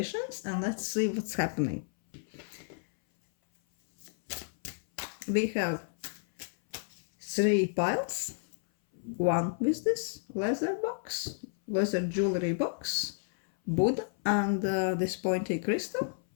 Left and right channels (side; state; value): right; silent; 57 dB below the other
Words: and let's see what's happening. We have 3 piles, one with this leather jewelry box, Buddha, and this pointy crystal.